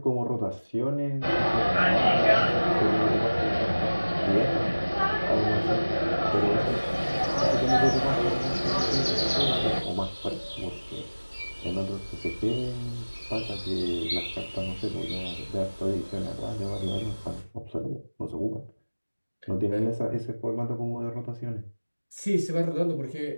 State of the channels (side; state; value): both; inverted; correlation -1.00